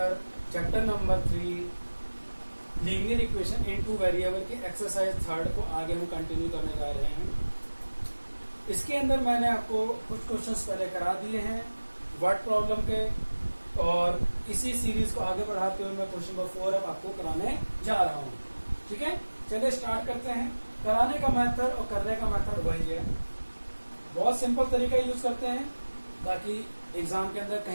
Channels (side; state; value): both; inverted; correlation -1.00